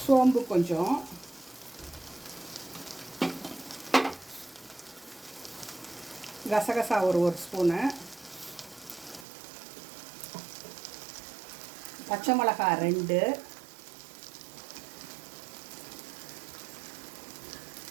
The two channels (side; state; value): left; drops out; at 9.2 s